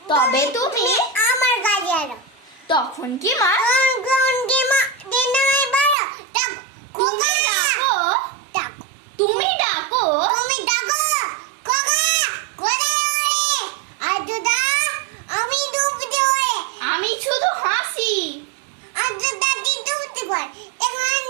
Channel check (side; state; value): left; drops out; at 6.0 s